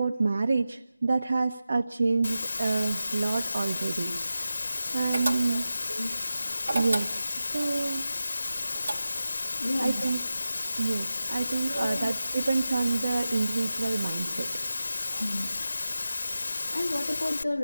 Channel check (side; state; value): both; inverted; correlation -0.93